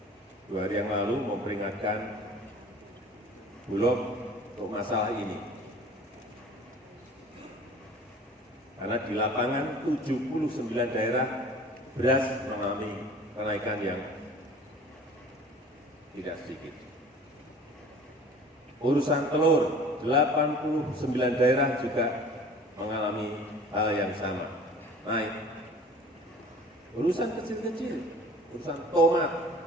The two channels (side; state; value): both; normal; correlation 0.46